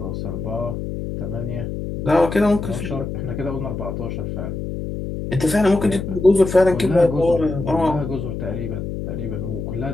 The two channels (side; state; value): left; noise; hum, 5 dB below the sound